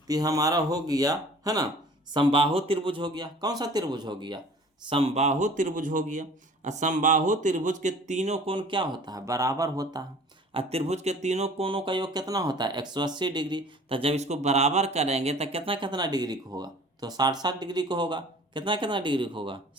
तो हमारा हो गया, है ना, समबाहु त्रिभुज हो गया। कौन सा त्रिभुज हो गया, समबाहु त्रिभुज हो गया। और समबाहु त्रिभुज के तीनों कोण क्या होता है, बराबर होता है। और त्रिभुज के तीनों कोणों का योग कितना होता है, 180 डिग्री। तो जब इसको बराबर करेंगे तो कितना कितना डिग्री को होगा, तो 60 डिग्री को होगा। कितना कितना डिग्री को होगा,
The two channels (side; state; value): both; normal; correlation 0.47